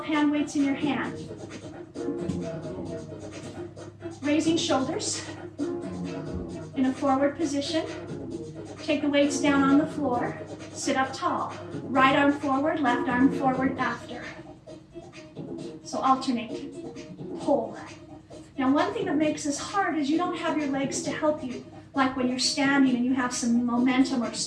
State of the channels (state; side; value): identical; both; correlation 1.00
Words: hand weights in your hand. Raising shoulders in a forward position. Take the weights down on the floor. Sit up tall. Right arm forward, left arm forward after. So alternate. Pull. Now one thing that makes this hard is you don't have your legs to help you, like when you're standing and you have some momentum or